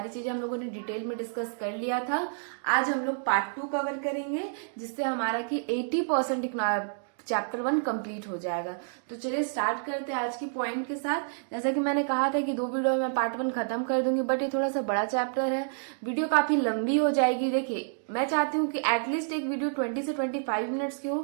चीजें हम लोगों ने डिटेल में डिस्कस कर लिया था। आज हम लोग पार्ट 2 कवर करेंगे जिससे हमारा कि 80% चैप्टर 1 कंप्लीट हो जाएगा। तो चलिए स्टार्ट करते हैं आज की पॉइंट के साथ। जैसा कि मैंने कहा था कि 2 वीडियो में पार्ट 1 खत्म कर दूंगी, बट ये थोड़ा सा बड़ा चैप्टर है, वीडियो काफी लंबी हो जाएगी। देखिए, मैं चाहती हूँ कि एटलीस्ट एक वीडियो 20 से 25 मिनट्स की हो,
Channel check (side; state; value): left; silent; digital silence